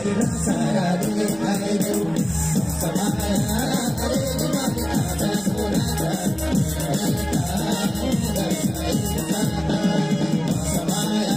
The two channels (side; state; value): right; noise; hum, 20 dB below the sound